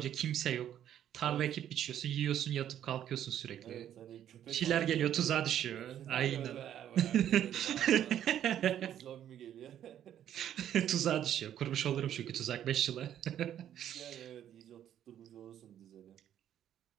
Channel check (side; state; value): left; quieter; 10.6 dB